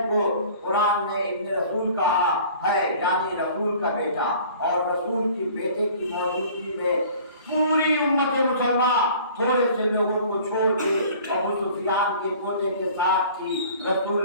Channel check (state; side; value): inverted; both; correlation -0.48